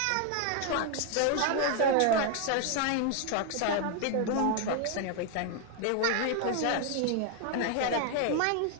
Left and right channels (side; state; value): both; different; correlation 0.01